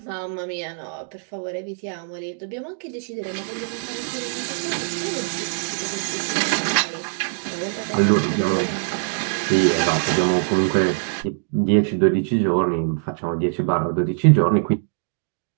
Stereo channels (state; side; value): silent; left; digital silence